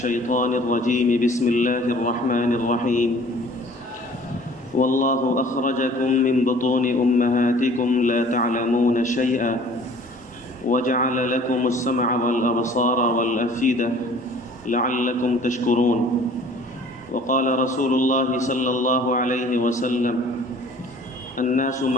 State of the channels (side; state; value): both; normal; correlation 0.51